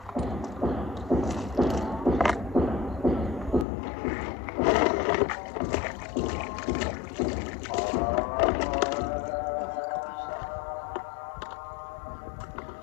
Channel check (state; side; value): drops out; right; at 3.7 s